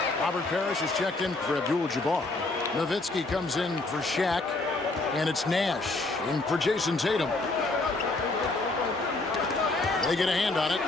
Robert Parrish is checked in for Abdul-Jabbar. Nowitzki comes in for Shaq. And it's Nash in for Jason Tatum. They get a hand on it.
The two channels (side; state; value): right; quieter; 3.2 dB